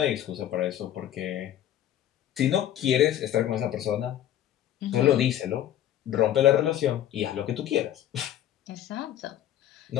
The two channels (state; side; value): quieter; right; 11.7 dB